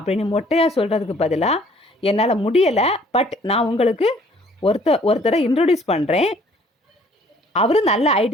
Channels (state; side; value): normal; both; correlation 0.58